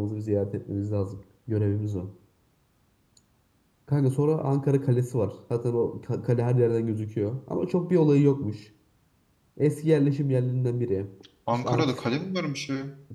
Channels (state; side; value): identical; both; correlation 1.00